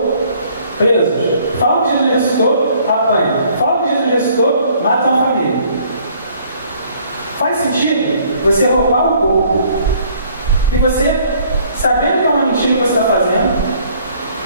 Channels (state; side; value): inverted; both; correlation -0.60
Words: presos. Falam que Jesus ressuscitou, apanham. Falam que Jesus ressuscitou, matam a família. Faz sentido você roubar o corpo e você, sabendo que é uma mentira que você está fazendo,